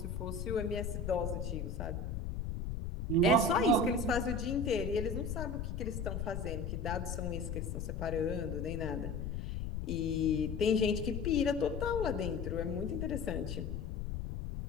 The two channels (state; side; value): noise; left; rumble, 3 dB below the sound